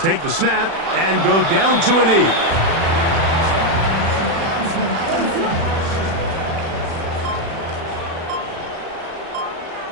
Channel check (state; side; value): late; left; 36 ms